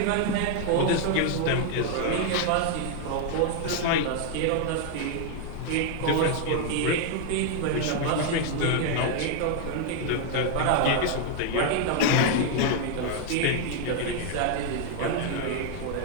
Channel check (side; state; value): both; different; correlation 0.00